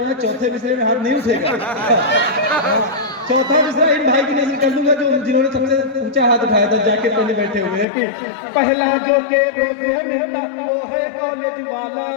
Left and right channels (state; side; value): drops out; right; at 7.9 s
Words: चौथे मिसरे में हाथ नहीं उठेगा। चौथा मिसरा इन भाई की नजर कर दूंगा जो जिन्होंने सबसे ऊंचा हाथ उठाया था, जाके पहले बैठे हुए हैं कि पहला जो के रोज है मिलता वो है कॉलेज वाला।